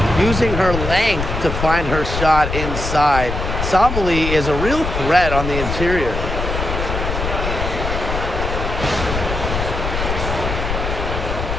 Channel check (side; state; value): left; noise; rumble, 3 dB below the sound